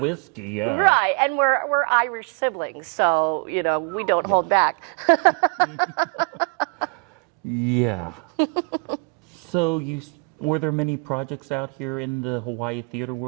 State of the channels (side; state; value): left; quieter; 35.9 dB